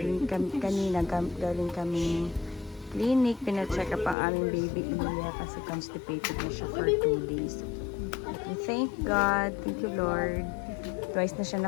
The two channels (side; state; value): right; drops out; at 4.2 s